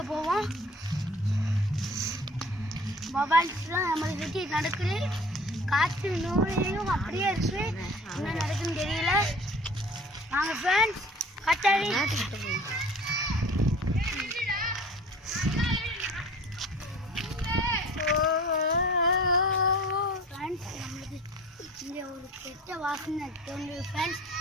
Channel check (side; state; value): both; normal; correlation 0.45